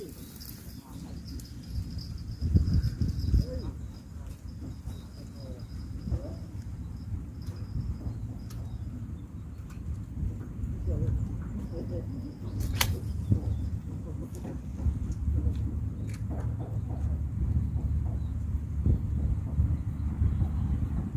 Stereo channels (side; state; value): both; identical; correlation 1.00